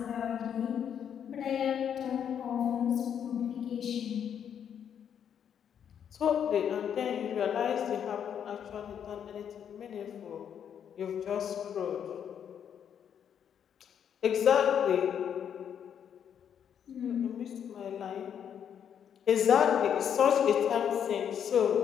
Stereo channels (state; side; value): quieter; right; 8.5 dB